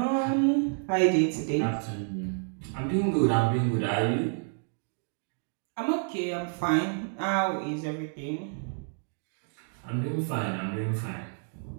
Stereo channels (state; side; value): silent; left; 58 dB below the other